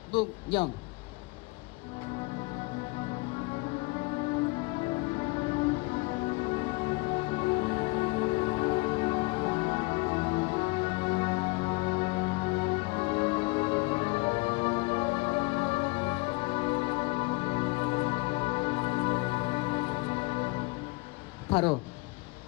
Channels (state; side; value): quieter; right; 25.3 dB